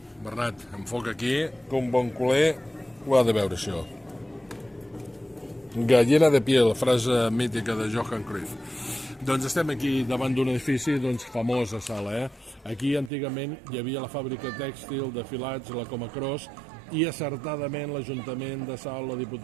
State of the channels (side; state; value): left; drops out; at 13.1 s